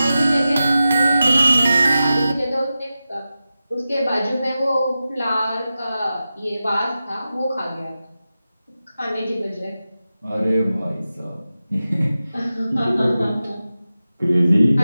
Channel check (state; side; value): inverted; both; correlation -0.93